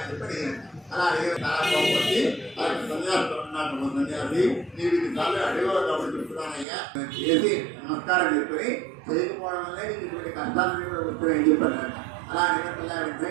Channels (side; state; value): left; drops out; at 6.7 s